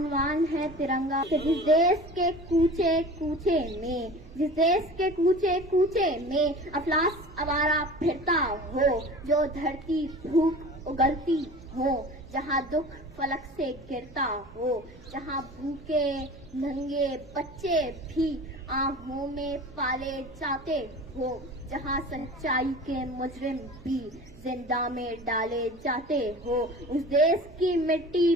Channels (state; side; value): noise; right; hum, 22 dB below the sound